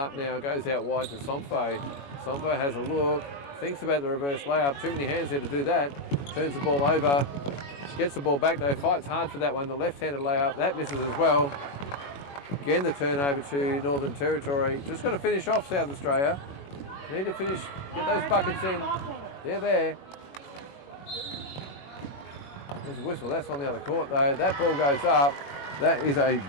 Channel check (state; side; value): late; right; 21 ms